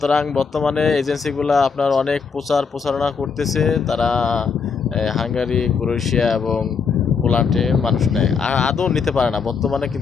বর্তমানে এজেন্সিগুলো আপনার অনেক প্রচারণা করতেছে। তারা হাঙ্গারি, ক্রোয়েশিয়া এবং পোল্যান্ডে মানুষ নেয়, আর আদৌ নিতে পারে না, বর্তমানে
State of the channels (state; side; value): quieter; right; 5.6 dB